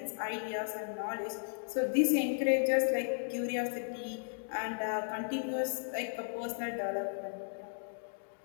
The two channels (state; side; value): silent; right; digital silence